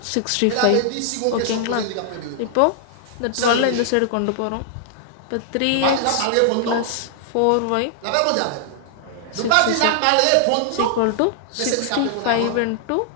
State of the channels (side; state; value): both; different; correlation -0.01